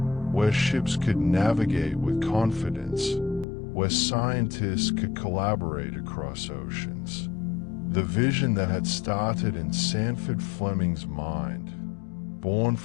where ships could navigate with confidence, where scientists could collaborate across oceans. The vision that had started in Sandford Fleming's mind, born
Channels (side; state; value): right; drops out; at 3.5 s